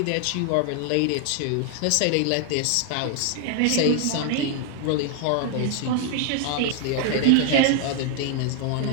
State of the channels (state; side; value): different; both; correlation 0.00